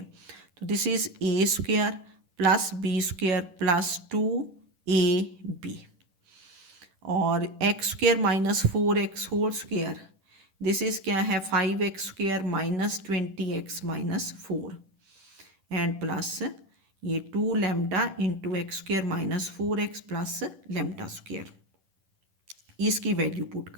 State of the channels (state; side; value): late; left; 10 ms